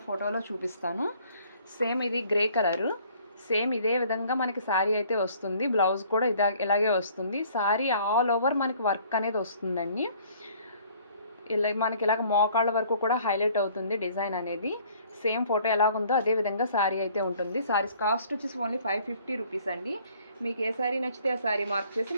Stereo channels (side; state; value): both; inverted; correlation -0.57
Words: ఫోటోలో చూపిస్తాను. సేమ్ ఇది గ్రే కలరు, సేమ్ ఇదే విధంగా మనకి సారీ అయితే వస్తుంది. బ్లౌజ్ కూడా ఇలాగే వస్తుంది. సారీ ఆల్ ఓవర్ మనకి వర్క్ అనేది వస్తుందండి. ఇలా మనకి ఇలాగ మోకాళ్ళ వరకు కూడా హైలైట్ అవుతుంది డిజైన్ అనేది. సేమ్ ఫోటో ఎలాగుందో అదే విధంగా సారీ అయితే ఉంటుంది. సారీస్ కాస్ట్ వచ్చేసి ఓన్లీ 550 రూపీస్ అండి. మీకు ఏ సారీ నచ్చితే ఆ సారీ మార్క్ చేసి